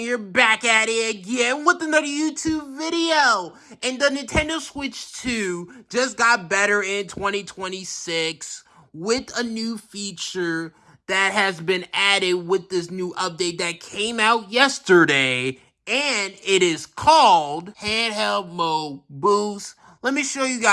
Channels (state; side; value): identical; both; correlation 1.00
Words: back at it again with another YouTube video. And the Nintendo Switch 2 just got better in 2026 with a new feature that has been added with this new update that came out yesterday. And it is called Handheld Mode Boost. Let me show you